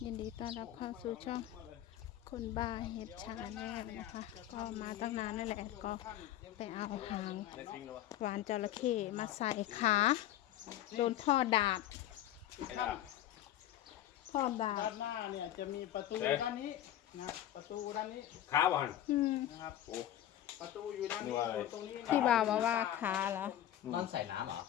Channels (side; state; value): right; quieter; 12.4 dB